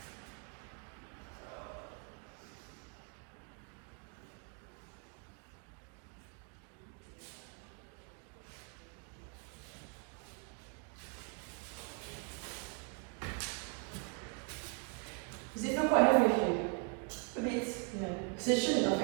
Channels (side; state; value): left; quieter; 36.7 dB